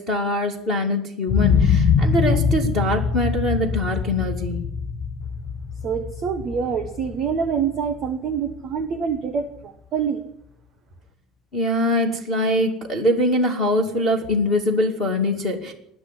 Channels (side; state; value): both; normal; correlation 0.30